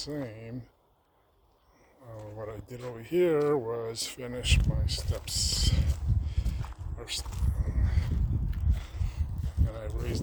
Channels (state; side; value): identical; both; correlation 1.00